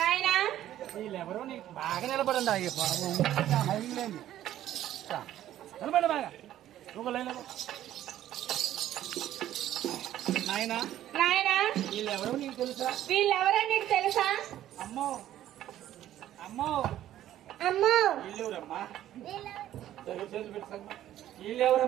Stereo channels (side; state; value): left; quieter; 12.6 dB